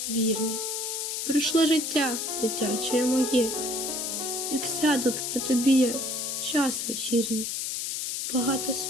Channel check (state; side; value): noise; left; hiss, 3 dB below the sound